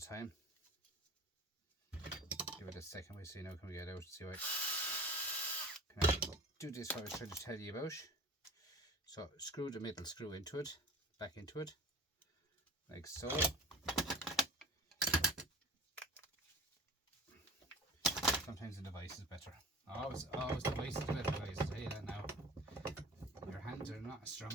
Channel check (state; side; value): normal; both; correlation 0.40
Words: time. Give it a second, we see now can we get out and see what. Can I do this what I was trying to tell you about? So screw the middle screw into it, back into it, like so. Sometimes the device is better. Always the device is better, guys. I'll tell you that now. Your hands are not as